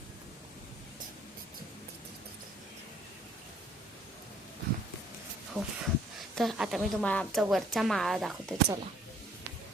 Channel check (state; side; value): normal; both; correlation 0.60